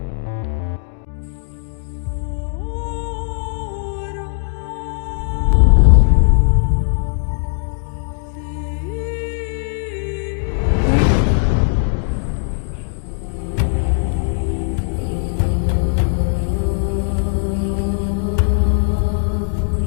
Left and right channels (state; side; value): silent; right; digital silence